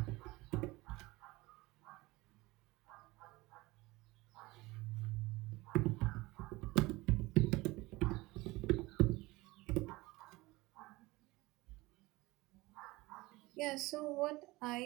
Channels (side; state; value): left; quieter; 21.2 dB